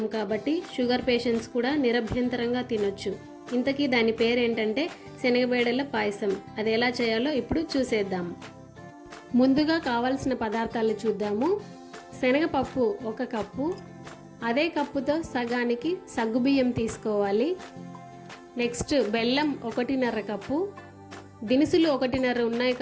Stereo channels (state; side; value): identical; both; correlation 1.00